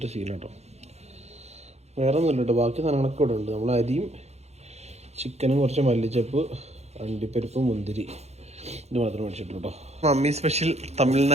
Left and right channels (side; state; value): left; late; 0.31 ms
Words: ശീലട്ടോ. വേറെ ഒന്നുമില്ല കേട്ടോ, ബാക്കി സാധനങ്ങളൊക്കെ ഇവിടെ ഉണ്ട്. നമ്മൾ അരിയും ചിക്കനും കുറച്ച് മല്ലിച്ചപ്പ്, അണ്ടിപ്പരിപ്പ്, മുന്തിരി, ഇത് മാത്രം മേടിച്ചിട്ടുള്ളൂ കേട്ടോ. Mummy special